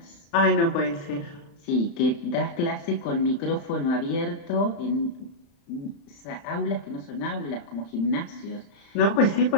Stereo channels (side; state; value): right; late; 35 ms